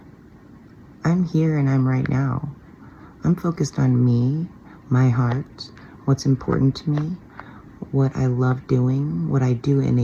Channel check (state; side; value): identical; both; correlation 1.00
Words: I'm here and I'm right now. I'm focused on me, my heart, what's important to me, what I love doing, what I do